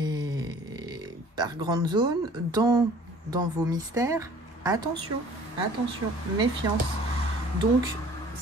par grande zone, dans vos mystères, attention, attention, méfiance. Donc,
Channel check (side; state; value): both; normal; correlation 0.51